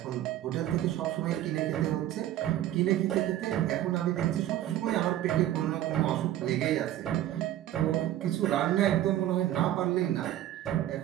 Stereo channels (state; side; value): quieter; left; 13.0 dB